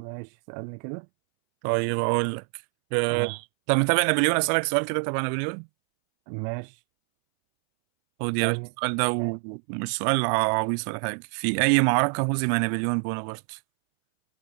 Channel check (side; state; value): left; silent; 61 dB below the other